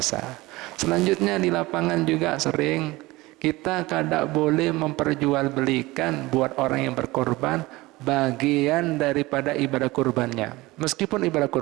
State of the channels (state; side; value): quieter; left; 20.5 dB